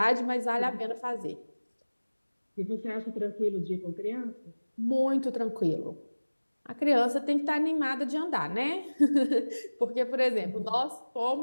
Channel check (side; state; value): both; inverted; correlation -1.00